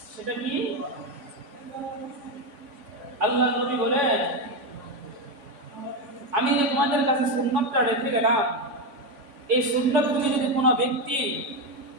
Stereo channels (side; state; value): left; late; 3.5 ms